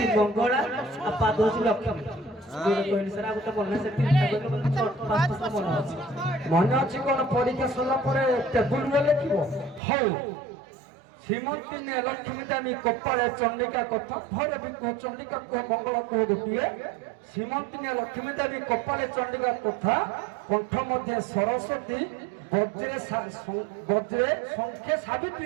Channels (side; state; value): left; drops out; at 9.8 s